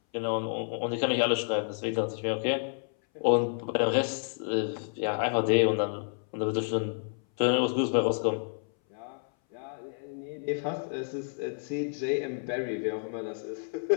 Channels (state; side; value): silent; right; 58 dB below the other